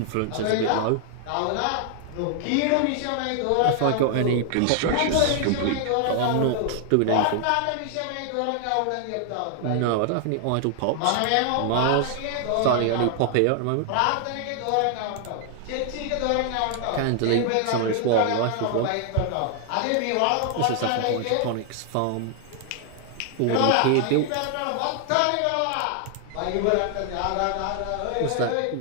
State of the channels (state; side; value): different; both; correlation 0.00